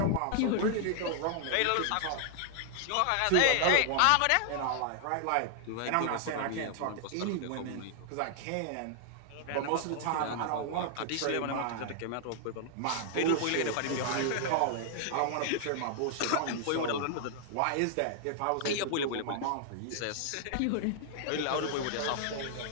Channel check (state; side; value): different; both; correlation -0.01